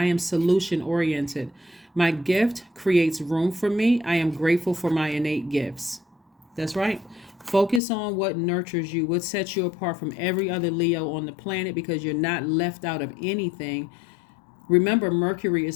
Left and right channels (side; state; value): right; drops out; at 7.8 s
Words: am solution oriented. My gift creates room for me. I am grateful for my innate gifts. That's right. Focus on what nurtures you, what sets you apart from every other Leo on the planet, because you're not left out of anything. Remember, Mercury